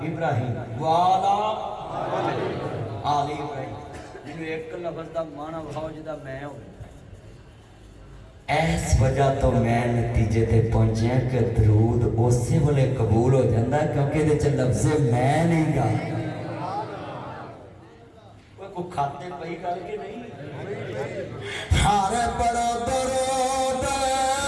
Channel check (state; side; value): identical; both; correlation 1.00